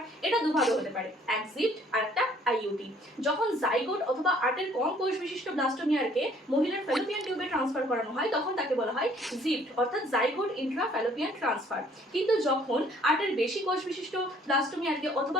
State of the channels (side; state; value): both; normal; correlation 0.59